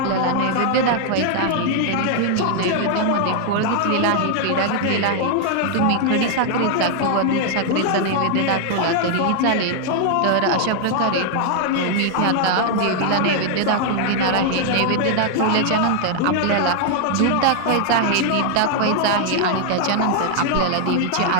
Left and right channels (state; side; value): different; both; correlation 0.00